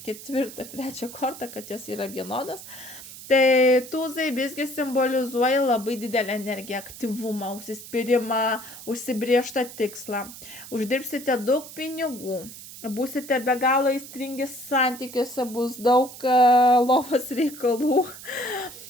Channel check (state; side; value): noise; right; hiss, 15 dB below the sound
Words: 4 ar 3 kortą, kad jos yra vienodas. Tai tuzai visgi simbolizuoja labai didelę energiją, aktyvumą, užsispyrimą, užsibriežtą tikslą. Uždirbsite daug pinigų, būsite be galo aistringi santykiuose, bus daug lovos reikalų.